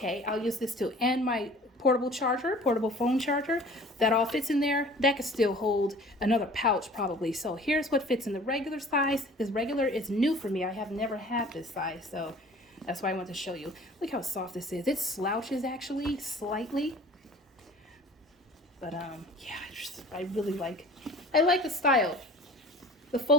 I'll use this too. And my portable phone charger. That all fits in there. That could still hold another pouch probably. So here's what fits in the regular size. This regular is new for me. I have never had this size, so that's why I want to show you. Look how soft this is. It slouches actually slightly. But yeah, I really like the style. The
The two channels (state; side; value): normal; both; correlation 0.47